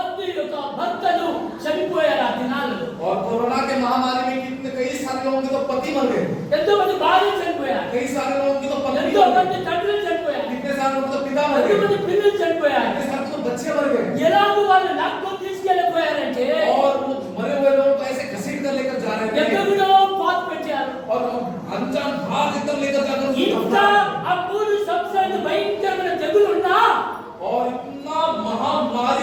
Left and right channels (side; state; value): both; identical; correlation 1.00